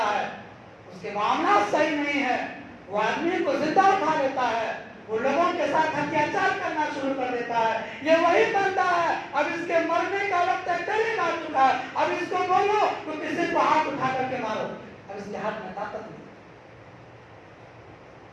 ہے، اس کے معاملات صحیح نہیں ہے، وہ آدمی کو زندہ اٹھا لیتا ہے، وہ لوگوں کے ساتھ اتیاچار کرنا شروع کر دیتا ہے. یہ وہی بندہ ہے، اب اس کے مرنے کا وقت قریب آ چکا ہے، اب اس کو بولو تو کسی کو ہاتھ اٹھا کر کے مارو. اب اس کے ہاتھ میں طاقت نہیں.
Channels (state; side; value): identical; both; correlation 1.00